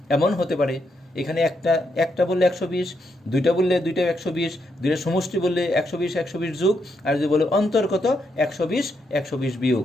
এমন হতে পারে এখানে একটা বললে 120, দুইটা বললে দুইটা 120, দুইটা সমষ্টি বললে 120 120 যোগ, আর যদি বলে অন্তর কত, 120 120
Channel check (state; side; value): normal; both; correlation 0.79